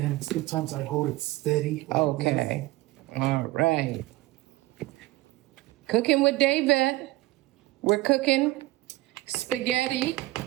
sometimes I hold it steady. Like Okay. All right. Cooking with David. We're cooking spaghetti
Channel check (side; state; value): left; quieter; 19.1 dB